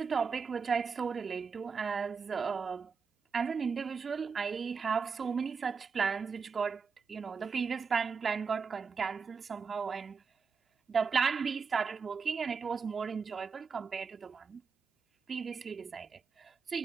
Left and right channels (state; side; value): quieter; left; 5.5 dB